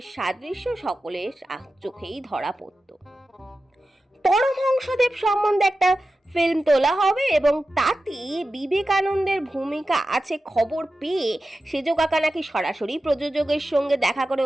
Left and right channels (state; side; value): normal; both; correlation 0.93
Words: সাদৃশ্য সকলের চোখেই ধরা পড়ত। পরমহংসদেব সম্বন্ধে একটা ফিল্ম তোলা হবে এবং তাতে বিবেকানন্দের ভূমিকা আছে খবর পেয়ে সেজো কাকা নাকি সরাসরি প্রযোজকের সঙ্গে দেখা করে